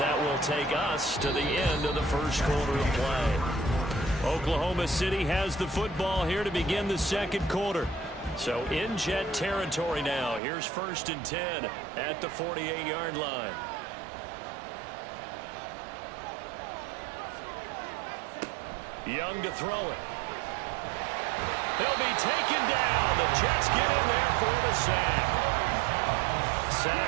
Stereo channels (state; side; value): drops out; left; at 10.4 s